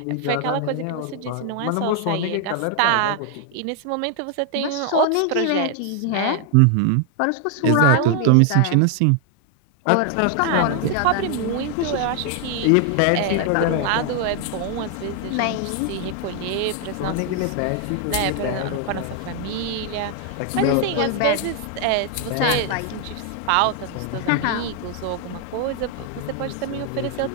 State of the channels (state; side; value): different; both; correlation 0.00